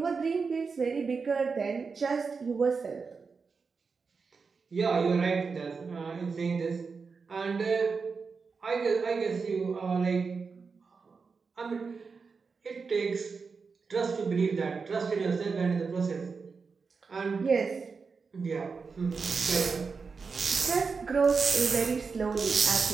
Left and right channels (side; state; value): left; quieter; 5.0 dB